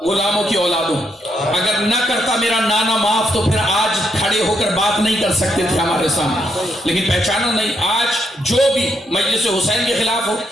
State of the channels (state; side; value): normal; both; correlation 0.77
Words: غلاموں کی اولادوں، اگر نہ کرتا میرا نانا معاف تو پھر آج کھڑے ہو کر بات نہیں کر سکتے تھے ہمارے سامنے، لیکن پہچانا نہیں۔ آج جو بھی مجلس حسین کے خلاف ہو،